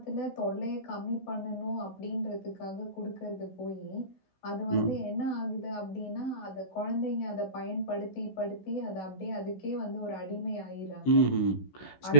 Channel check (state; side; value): late; right; 16 ms